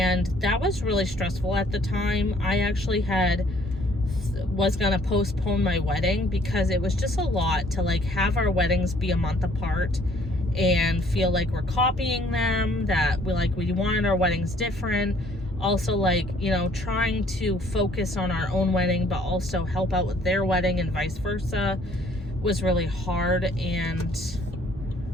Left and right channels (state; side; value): normal; both; correlation 0.60